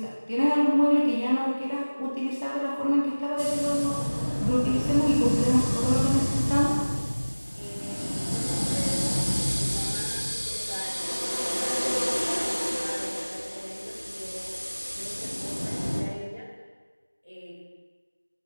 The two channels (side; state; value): both; inverted; correlation -1.00